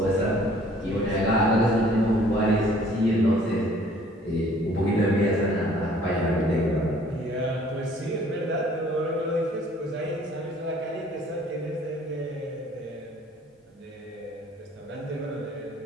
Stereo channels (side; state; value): both; normal; correlation 0.56